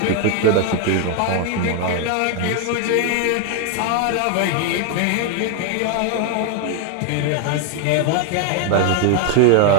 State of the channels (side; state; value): both; different; correlation 0.01